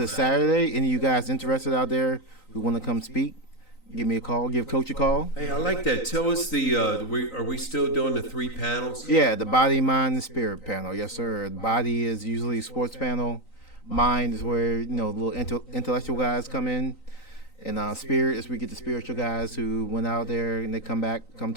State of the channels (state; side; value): late; right; 3.9 ms